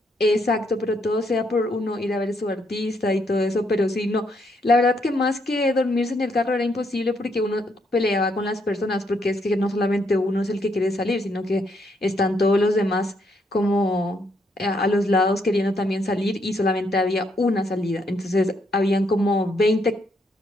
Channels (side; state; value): both; normal; correlation 0.74